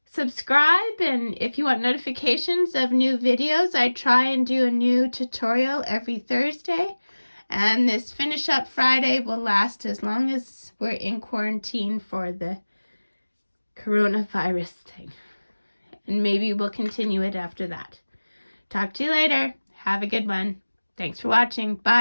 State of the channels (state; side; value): inverted; both; correlation -1.00